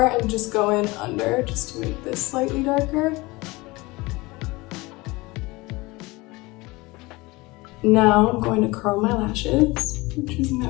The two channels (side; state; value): right; quieter; 22.7 dB